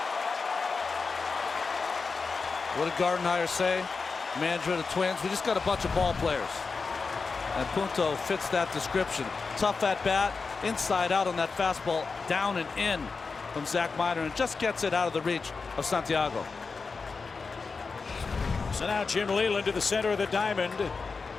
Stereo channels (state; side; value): quieter; right; 4.6 dB